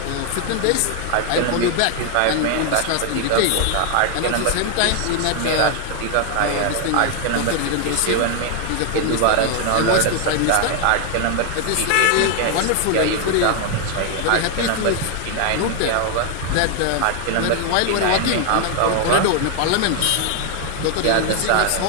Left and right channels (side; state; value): both; different; correlation 0.00